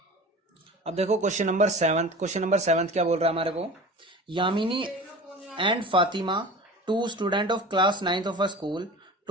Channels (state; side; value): normal; both; correlation 0.37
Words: अब देखो क्वेश्चन नंबर 7 क्या बोल रहा है हमारे को, Yamini and Fatima, 2 student of class 9th of a school,